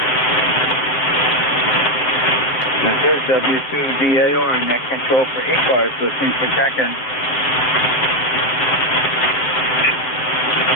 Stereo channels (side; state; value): right; late; 8.0 ms